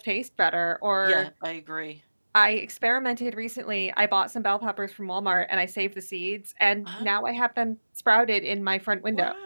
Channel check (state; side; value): inverted; both; correlation -1.00